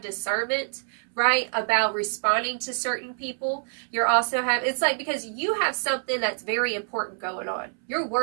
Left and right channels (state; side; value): silent; left; 61 dB below the other